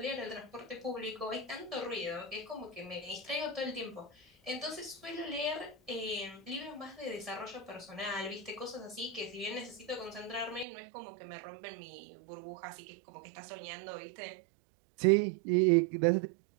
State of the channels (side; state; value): left; drops out; at 10.7 s